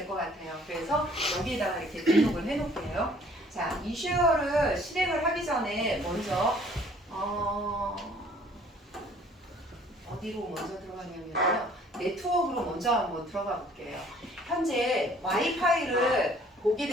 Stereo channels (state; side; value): normal; both; correlation 0.56